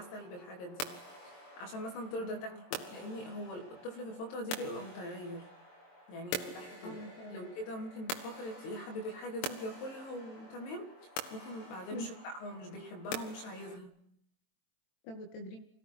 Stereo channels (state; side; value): late; right; 22 ms